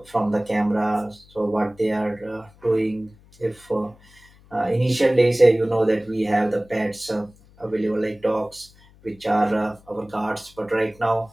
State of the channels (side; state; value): left; noise; hum, 27 dB below the sound